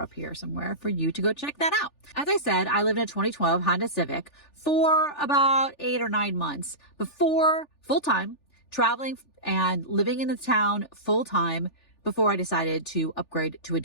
here somewhere for you to go check that out. As I said, I lived in a 2012 Honda Civic for about 8 or 9 months before full-time, traveling and living in the town full-time before I decided to upgrade to a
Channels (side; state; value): right; late; 3.4 ms